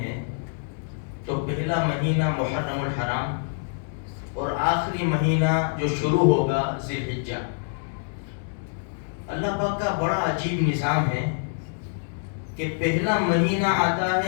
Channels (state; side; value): silent; right; digital silence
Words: تو پہلا مہینہ محرم الحرام اور آخری مہینہ جو شروع ہوگا ذی الحجہ۔ اللہ پاک کا بڑا عجیب نظام ہے کہ پہلا مہینہ آتا